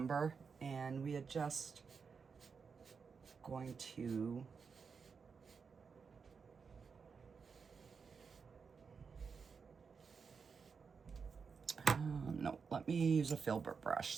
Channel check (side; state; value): left; quieter; 5.6 dB